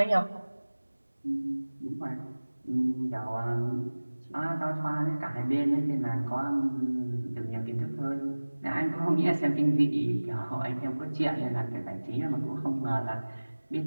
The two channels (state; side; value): inverted; both; correlation -1.00